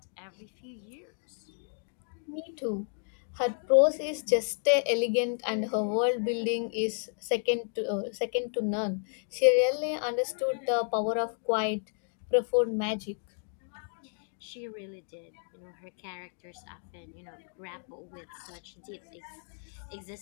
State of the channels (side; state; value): right; silent; 57 dB below the other